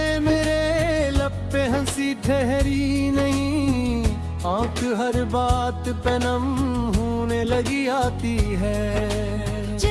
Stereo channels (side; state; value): both; identical; correlation 1.00